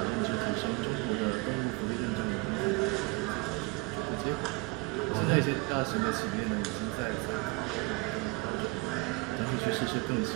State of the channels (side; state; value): left; quieter; 26.7 dB